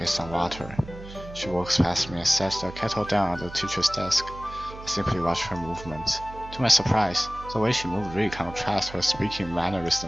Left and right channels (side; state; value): right; noise; hum, 14 dB below the sound